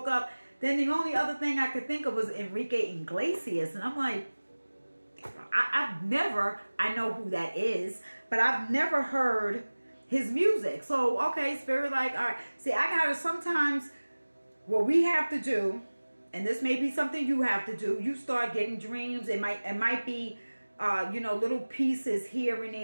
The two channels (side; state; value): both; inverted; correlation -1.00